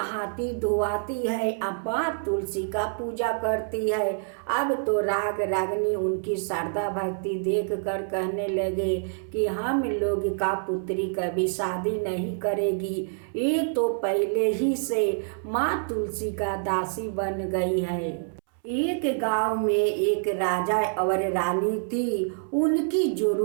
धोआती है, अब माँ तुलसी का पूजा करती है। अब तो रागिनी उनकी श्रद्धा भक्ति देख कर कहने लगे कि हम लोग का पुत्री कभी शादी नहीं करेगी, ये तो पहले ही से माँ तुलसी का दासी बन गई है। एक गांव में एक राजा और रानी थी। उनकी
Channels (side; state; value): left; silent; 60 dB below the other